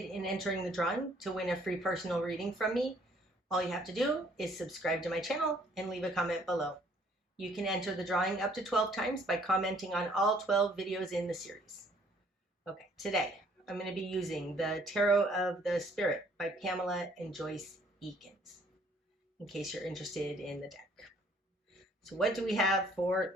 in entering the drawing to win a free personal reading from me, all you have to do is subscribe to my channel and leave a comment below. You can enter the drawing up to 12 times by commenting on all 12 videos in the series. Okay, today I'm going to be using the Tarot of the Spirit by Pamela and Joyce Eakins, in case you're interested in the deck. So what do we have for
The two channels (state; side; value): normal; both; correlation 0.61